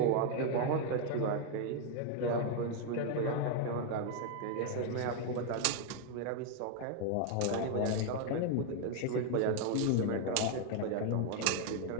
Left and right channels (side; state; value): both; different; correlation 0.00